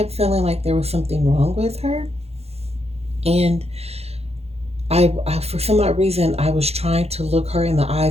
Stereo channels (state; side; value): late; left; 0.30 ms